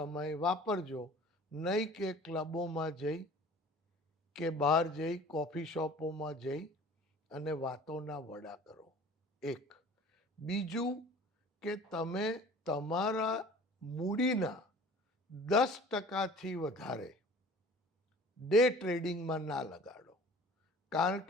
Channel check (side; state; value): both; normal; correlation 0.46